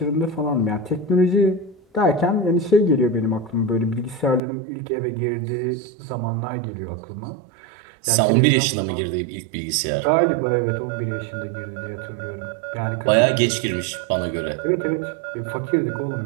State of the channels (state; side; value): drops out; left; at 4.4 s